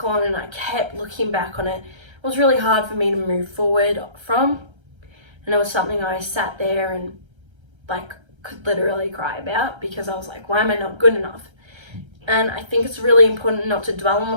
on, and I kept looking back on it. It was really hard for me to move forward from, and it was something I sat there and like could literally cry about, because I was like, why am I not good enough? And I think it's really important not to dwell on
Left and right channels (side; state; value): left; late; 1.3 ms